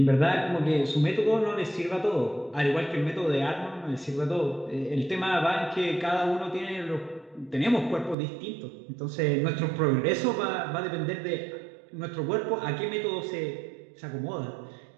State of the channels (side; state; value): left; drops out; at 8.2 s